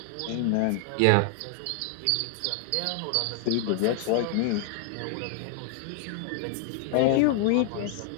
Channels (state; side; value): different; both; correlation 0.00